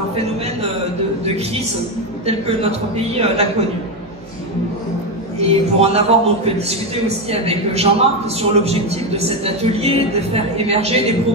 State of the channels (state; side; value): noise; right; hum, 23 dB below the sound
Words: phénomène de crise tel que notre pays l'a connu? Et pour en avoir donc discuté aussi avec Jean-Marc sur l'objectif de cet atelier, de faire émerger des